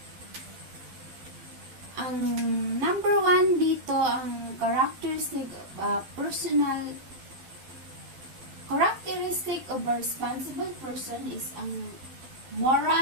Ang number 1 dito, ang characteristic of a responsible person is ang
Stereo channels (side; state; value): left; late; 12 ms